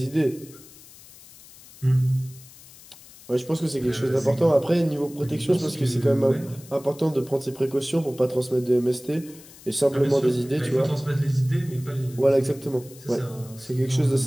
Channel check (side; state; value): left; noise; hiss, 21 dB below the sound